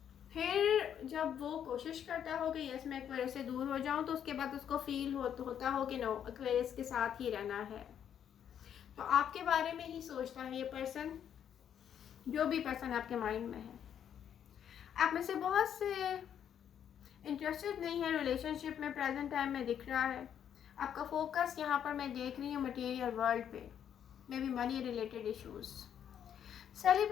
फिर जब वो कोशिश करता हो कि यस मैं एक्वेरियस से दूर हो जाऊं, तो उसके बाद उसको फील होता हो कि नो एक्वेरियस के साथ ही रहना है। तो आपके बारे में ही सोचता है ये पर्सन, जो भी पर्सन आपके माइंड में है। आप में से बहुत से इंटरेस्टेड नहीं है रिलेशनशिप में, प्रेजेंट टाइम में दिख रहा है। आपका फोकस यहाँ पर मैं देख रही हूँ मटेरियल वर्ल्ड पे, may be money related issues.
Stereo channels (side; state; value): right; quieter; 9.1 dB